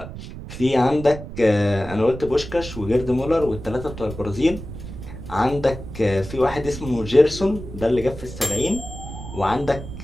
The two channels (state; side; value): noise; right; rumble, 11 dB below the sound